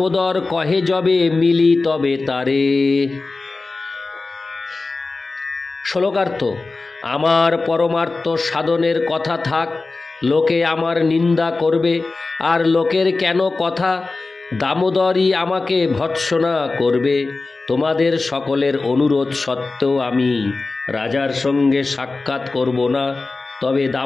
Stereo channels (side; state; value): right; quieter; 3.6 dB